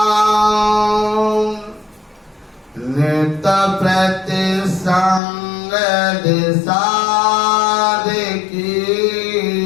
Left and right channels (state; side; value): drops out; right; at 5.2 s